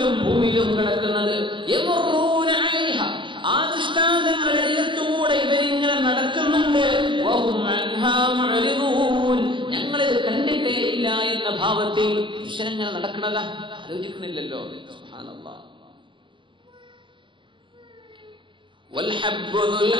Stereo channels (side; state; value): left; late; 0.24 ms